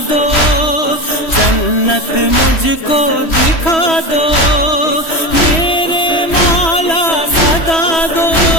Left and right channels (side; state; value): right; late; 3.1 ms